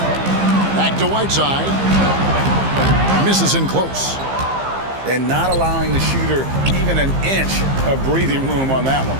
Back to Whiteside. Misses in close. And not allowing the shooter even an inch of breathing room on that one.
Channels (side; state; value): left; late; 15 ms